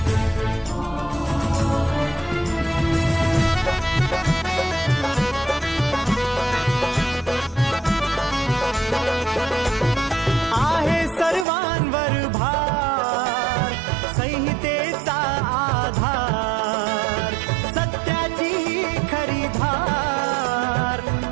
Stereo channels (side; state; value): left; drops out; at 11.5 s